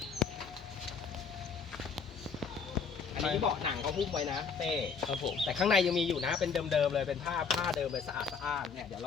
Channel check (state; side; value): quieter; right; 5.7 dB